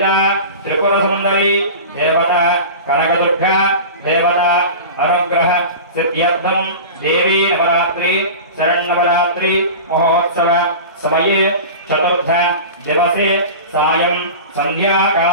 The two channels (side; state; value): both; inverted; correlation -0.32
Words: त्रिपुरसुंदरी देवता कनकदुर्गा देवता अनुग्रह सिद्ध्यर्थं देवी नवरात्रि शरण्नवरात्रि महोत्सव समये चतुर्थ दिवसे सायं